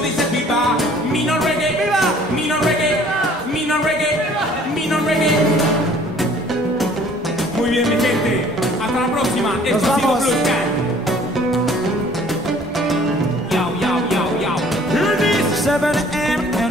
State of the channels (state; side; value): normal; both; correlation 0.55